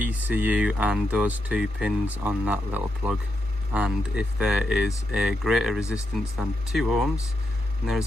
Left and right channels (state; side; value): normal; both; correlation 0.84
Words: and those 2 pins on that little plug. And if there is a greater resistance than 2 ohms, then there